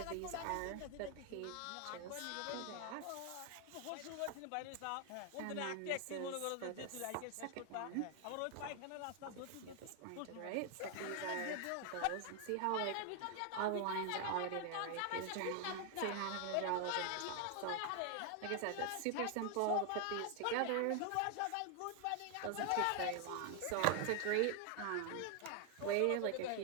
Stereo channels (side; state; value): both; different; correlation 0.00